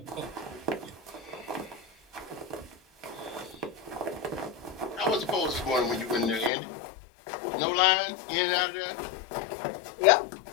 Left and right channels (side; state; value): right; drops out; at 6.5 s